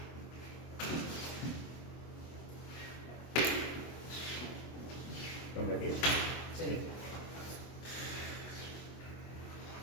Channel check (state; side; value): late; right; 24 ms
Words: ¿Dónde aquí? Sí.